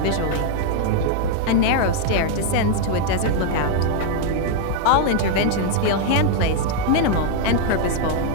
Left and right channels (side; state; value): both; different; correlation 0.00